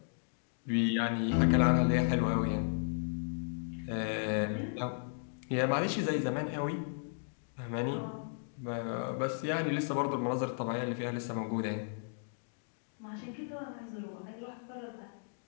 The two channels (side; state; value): right; silent; digital silence